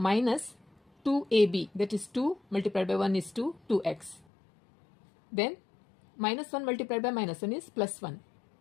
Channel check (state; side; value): drops out; right; at 4.2 s